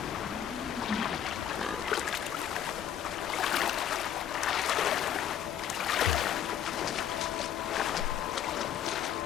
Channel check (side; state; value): right; quieter; 9.8 dB